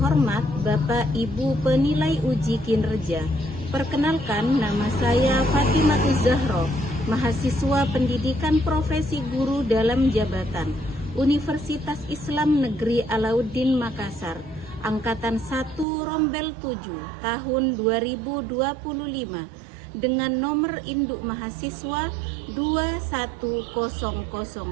Bapak Ibu penilai uji kinerja, perkenalkan nama saya Fatimah Zahra, mahasiswa pendidikan profesi guru dalam jabatan Universitas Islam Negeri Alauddin Makassar, Angkatan 1 Rombel 7 tahun 2025 dengan nomor induk mahasiswa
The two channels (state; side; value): drops out; left; at 15.9 s